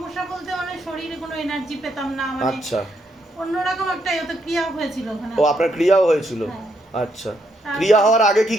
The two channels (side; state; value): both; normal; correlation 0.76